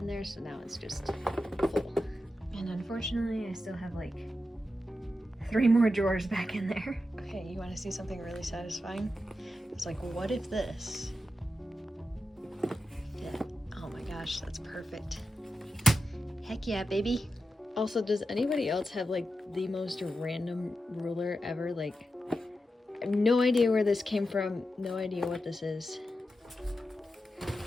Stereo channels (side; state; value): both; normal; correlation 0.89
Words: there, so now it's just full. And unfortunately, I still have like 3 more drawers back in there. Okay, you want to see something really satisfying? It's like, what if this fit? Oh my gosh, that's perfect. Heck yeah, baby. Also, does anybody else have like the most random ruler ever? Like, I have no idea where this came from, no idea what this is.